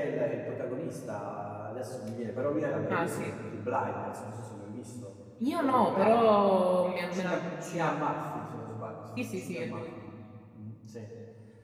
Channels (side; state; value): both; identical; correlation 1.00